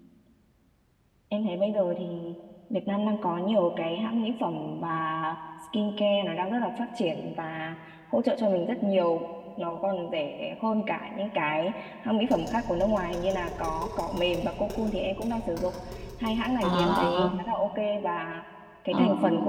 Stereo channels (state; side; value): identical; both; correlation 1.00